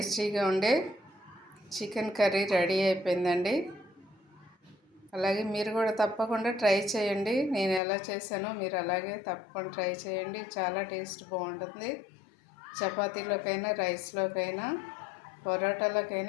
ఉండే చికెన్ కర్రీ రెడీ అయిపోయిందండి. అలాగే మీరు కూడా తప్పకుండా ట్రై చేయండి. నేను ఎలా చేశానో మీరు అలాగే తప్పకుండా ట్రై చేయండి. చాలా టేస్ట్ బాగుంటుంది. చపాతీలోకైనా, రైస్లోకైనా,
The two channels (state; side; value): drops out; right; at 7.8 s